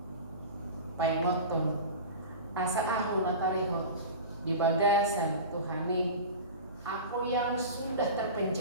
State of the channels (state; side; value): inverted; both; correlation -0.32